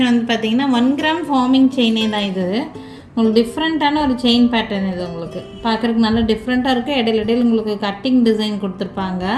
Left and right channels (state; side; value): identical; both; correlation 1.00